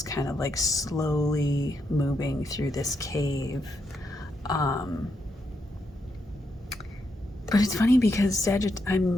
kind of like slowly moving through this cave. But it's funny because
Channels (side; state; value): both; normal; correlation 0.81